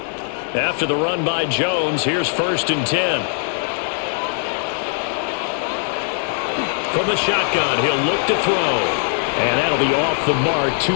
After the run by Jones, here's 1st and 10. From the shotgun, he'll look to throw. And that'll be off the mark,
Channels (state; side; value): silent; right; 64 dB below the other